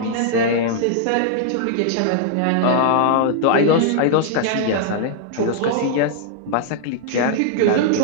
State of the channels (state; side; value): different; both; correlation -0.01